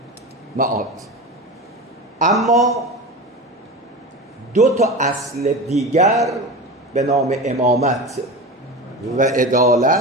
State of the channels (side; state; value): both; normal; correlation 0.27